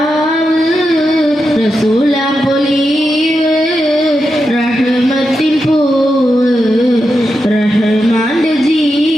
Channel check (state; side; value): normal; both; correlation 0.87